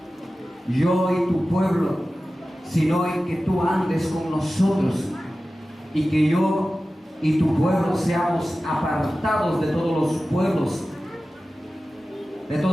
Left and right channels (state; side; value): normal; both; correlation 0.95